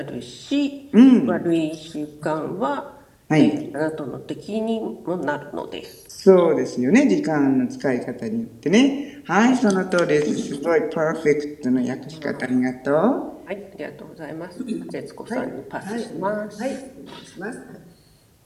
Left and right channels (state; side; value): identical; both; correlation 1.00